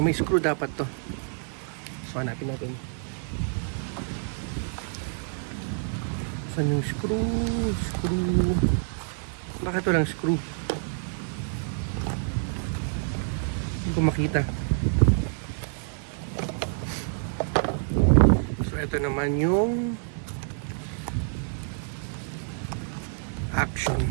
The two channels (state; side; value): silent; left; digital silence